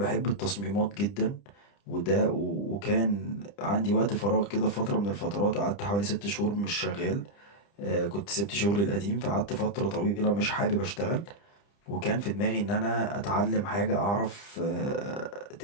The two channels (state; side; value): late; right; 30 ms